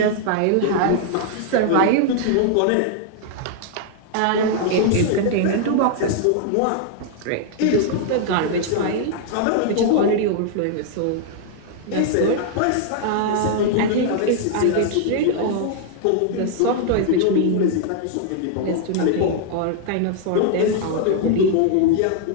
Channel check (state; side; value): different; both; correlation -0.01